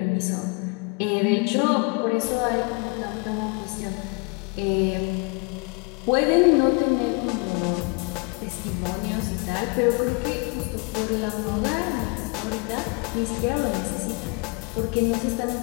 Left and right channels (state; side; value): quieter; right; 32.5 dB